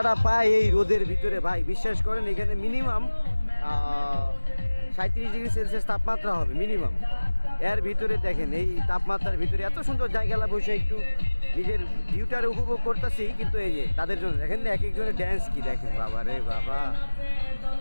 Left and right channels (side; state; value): both; inverted; correlation -1.00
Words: পায় এই রোদের ভিতরে ভাই, বিশ্বাস করেন এখানে মিনিমাম 37°C তাপমাত্রা হবে মিনিমাম। এর ভিতরে দেখেন এই তাপমাত্রার ভিতরে এত সুন্দর জায়গাটা বসে একটু নিজের ভিউটার উপভোগ করতেছি, কিন্তু এই যে তাদের জন্য দেখেন না এক একজনের ড্যান্স কি দেখেন, বাবা রে বাবা,